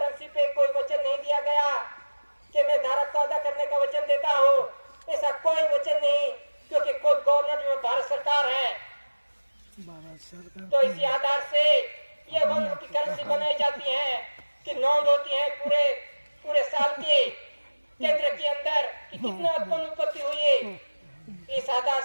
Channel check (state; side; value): inverted; both; correlation -1.00